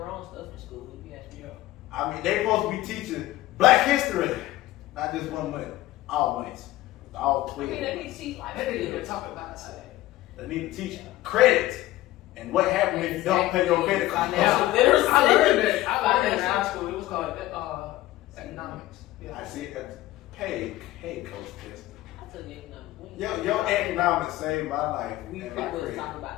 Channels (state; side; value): quieter; right; 16.2 dB